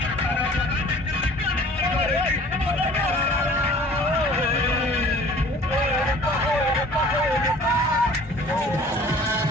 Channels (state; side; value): normal; both; correlation 0.49